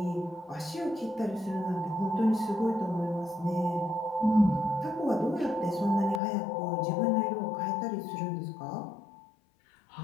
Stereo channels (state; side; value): drops out; right; at 6.2 s